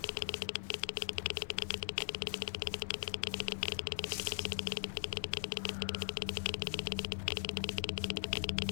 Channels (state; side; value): silent; right; digital silence